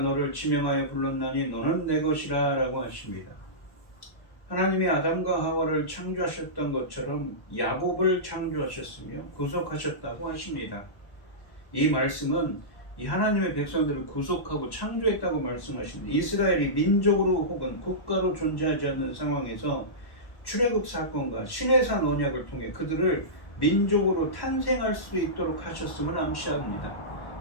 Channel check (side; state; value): right; late; 1.1 ms